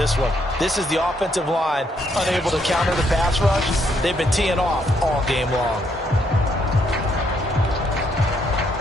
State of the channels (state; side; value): normal; both; correlation 0.73